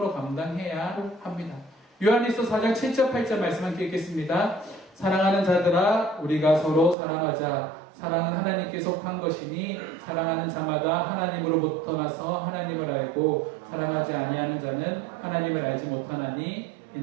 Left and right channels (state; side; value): drops out; left; at 7.0 s